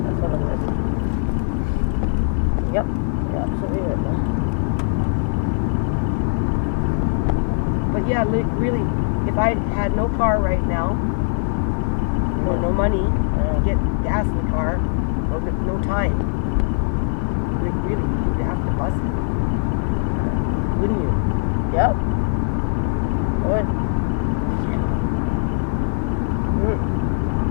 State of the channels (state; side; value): silent; right; 65 dB below the other